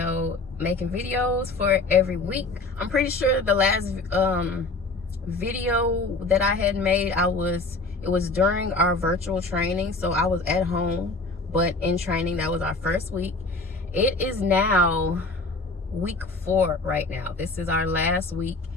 making videos for every week. I'm pretty sure the last video that I had made, it was during our virtual training, so I was at home, but in training. That was our first week. It is now week 4 right now. This is our last week.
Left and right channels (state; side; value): quieter; right; 3.3 dB